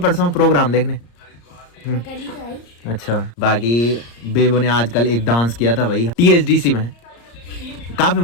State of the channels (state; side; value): late; right; 34 ms